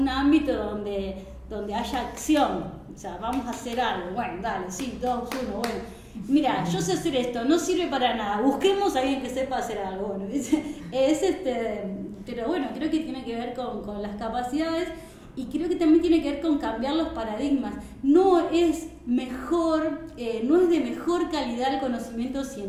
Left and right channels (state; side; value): identical; both; correlation 1.00